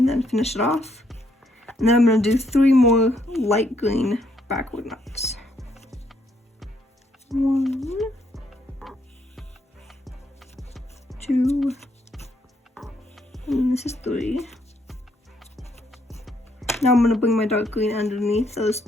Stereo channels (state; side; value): normal; both; correlation 0.72